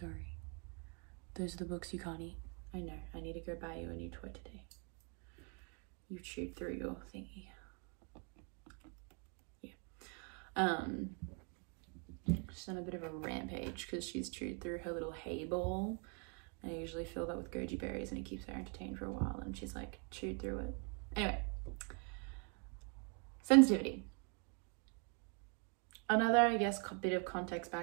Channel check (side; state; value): left; quieter; 36.3 dB